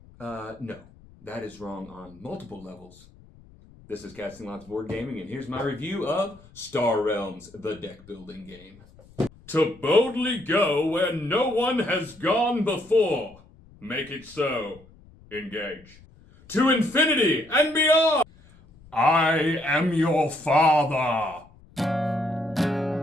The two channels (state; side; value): noise; left; rumble, 25 dB below the sound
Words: No, that is wrong on multiple levels. This is Casting Lots Board Gaming, and here's my review of Star Realms, the deck building game. To boldly go where no one has gone before. Make it so. Engage. To infinity and beyond. I am your father.